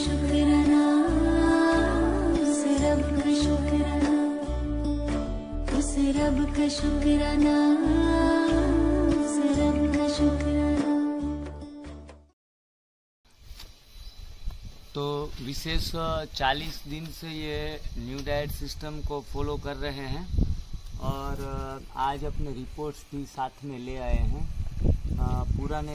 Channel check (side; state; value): both; identical; correlation 1.00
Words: उस रब का शुक्राना, उस रब का शुक्राना, उस रब का शुक्राना। तो विशेष 40 दिन से ये न्यू डाइट सिस्टम को फॉलो कर रहे हैं और आज अपने रिपोर्ट्स भी साथ में ले आए हैं।